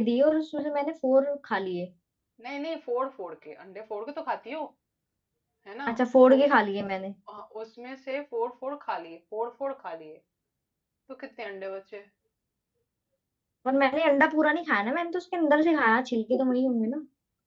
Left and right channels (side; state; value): both; identical; correlation 1.00